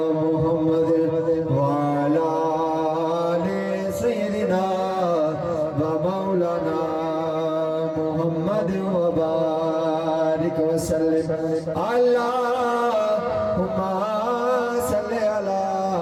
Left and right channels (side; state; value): both; identical; correlation 1.00